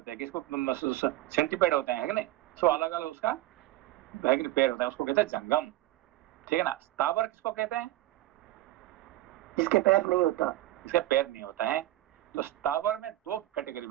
हैं, किसको सेंटीपेड होते हैं, है कि नहीं? सो अलग अलग उसका पैर होता है, उसको कहते हैं जंगम। ठीक है ना? स्थावर किसको कहते हैं? जिसके पैर नहीं होता, इसका पैर नहीं होता है। तो स्थावर में 2 कैटेगरी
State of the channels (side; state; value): left; quieter; 15.8 dB